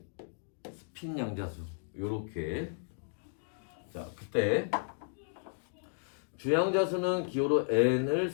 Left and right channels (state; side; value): silent; right; digital silence